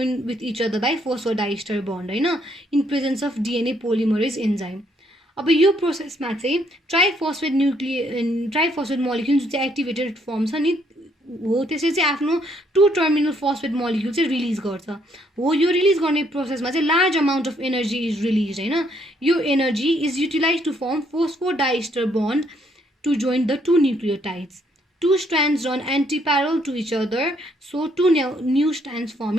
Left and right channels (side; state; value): both; normal; correlation 0.70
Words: with each other by phosphodiester bond होइन in presence of DNA polymerase enzyme अब यो प्रोसेसमा चाहिँ ट्राइफोस्फेट मोलिक्युल जुन चाहिँ एक्टिभेटेड फर्म छ नि हो त्यसले चाहिँ आफ्नो 2 टर्मिनल फोस्फेट मोलिक्युल चाहिँ रिलिज गर्छ हो यो रिलिज गर्ने प्रोसेसमा चाहिँ large amount of energy is release होइन यो energy is utilize to form phosphodiester bond to join the 2 nucleotides 2 strands run anti-parallel to each other, so 2 new strands form